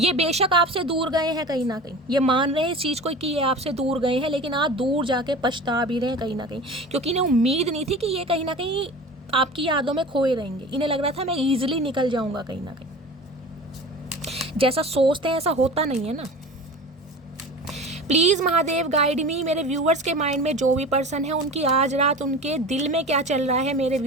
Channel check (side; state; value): both; normal; correlation 0.36